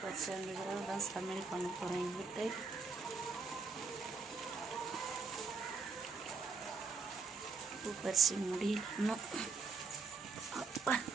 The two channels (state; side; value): quieter; left; 4.6 dB